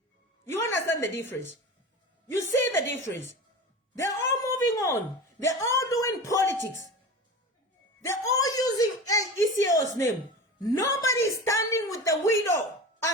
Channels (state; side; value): normal; both; correlation 0.31